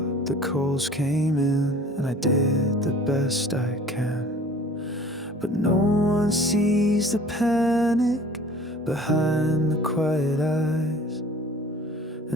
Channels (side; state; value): both; normal; correlation 0.48